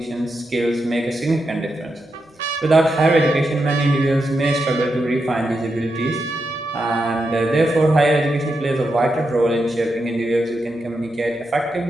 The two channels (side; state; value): both; normal; correlation 0.86